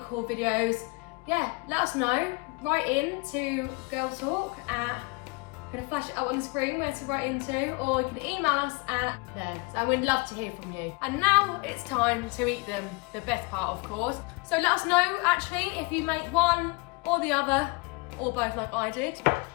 videos, yeah, let us know. Write in to Girl Talk at, I'm gonna flash it up on the screen where to write into, or you can email us at there. So we'd love to hear from you. And now it's time to eat them, the best part of course. So let us know actually if you make one or the other, or both like I did.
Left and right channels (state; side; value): quieter; right; 28.3 dB